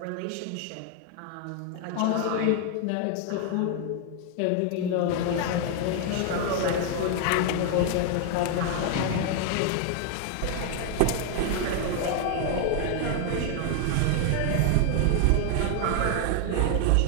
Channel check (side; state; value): both; different; correlation 0.00